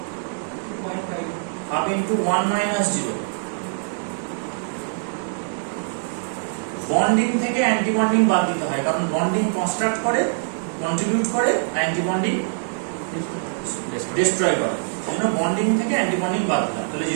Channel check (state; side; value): silent; left; 63 dB below the other